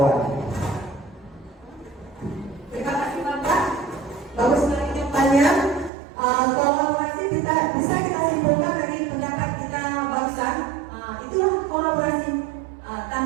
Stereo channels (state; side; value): drops out; left; at 5.9 s